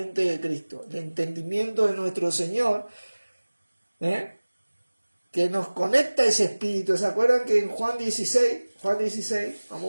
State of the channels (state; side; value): inverted; both; correlation -1.00